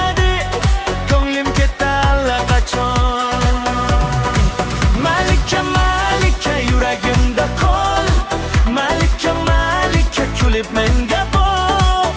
ko'nglim ketdi allaqachon. Malika, Malika, yuragimda qol. Malika, Malika, kulib menga boq.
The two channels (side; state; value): both; identical; correlation 1.00